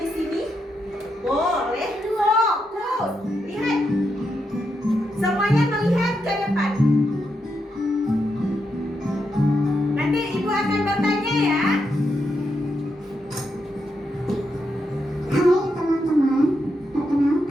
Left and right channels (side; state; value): both; normal; correlation 0.83